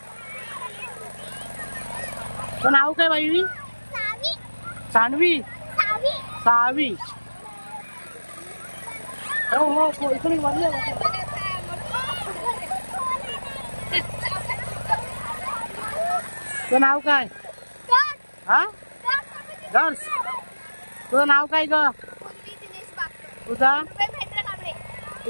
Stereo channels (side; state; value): both; inverted; correlation -1.00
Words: तर नाव काय बाई? सानवी. सावी. हो हो इकडे वाढले. तुझं नाव काय? हा गर्ल्स. तुझं नाव काय ग? तुझा